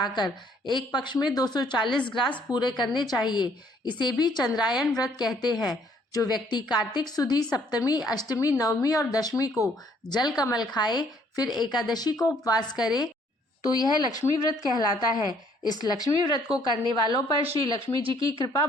एक पक्ष में 240 ग्रास पूरे करने चाहिए। इसे भी चंद्रायन व्रत कहते हैं। जो व्यक्ति कार्तिक सुदी सप्तमी, अष्टमी, नवमी और दशमी को जल कमल खाए, फिर एकादशी को उपवास करे, तो यह लक्ष्मी व्रत कहलाता है। इस लक्ष्मी व्रत को करने वालों पर श्री लक्ष्मी जी की कृपा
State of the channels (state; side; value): normal; both; correlation 0.63